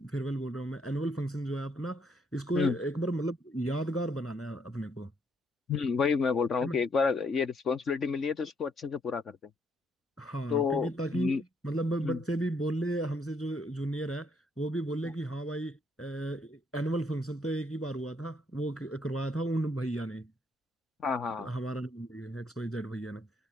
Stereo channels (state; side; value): normal; both; correlation 0.71